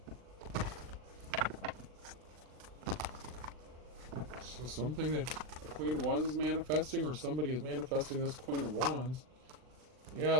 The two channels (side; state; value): left; late; 39 ms